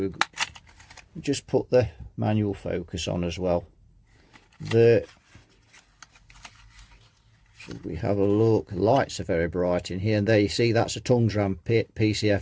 just put the manual focus on as well. Should we have a look? Lights are very bright in here, and there you see that's a Tungs Ram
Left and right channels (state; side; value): identical; both; correlation 1.00